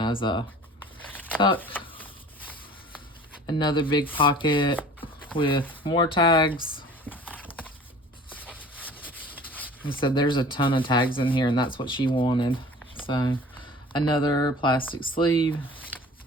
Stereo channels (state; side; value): normal; both; correlation 0.45